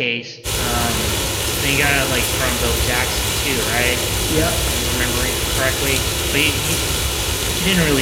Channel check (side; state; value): both; identical; correlation 1.00